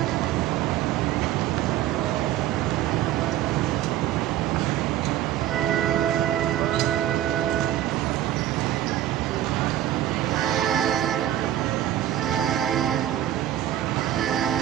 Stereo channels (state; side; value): quieter; left; 12.5 dB